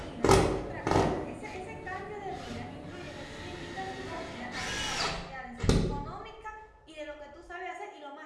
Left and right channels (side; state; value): both; identical; correlation 1.00